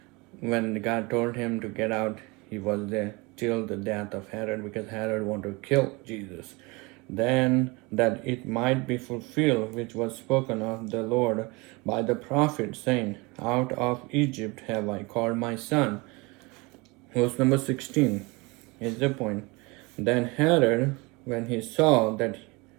when God told him to get out. He was there till the death of Herod, because Herod wanted to kill Jesus. Then that it might be fulfilled which was spoken of the Lord by the prophet, saying, out of Egypt have I called my son. Verse number 16 is the point. Then Herod, when he saw that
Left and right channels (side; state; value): left; quieter; 26.1 dB